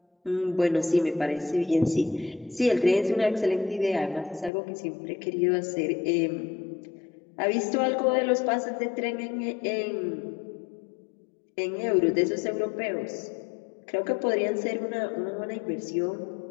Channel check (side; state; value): right; drops out; at 4.5 s